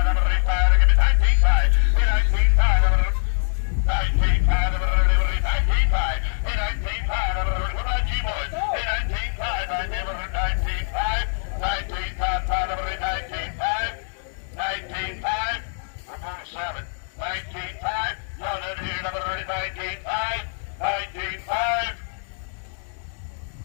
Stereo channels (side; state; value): right; silent; digital silence